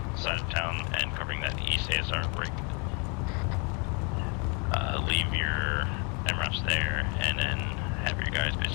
side of town and covering that east ASR break. Leave your MRAPs there, and then have your guys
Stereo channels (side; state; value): right; quieter; 34.8 dB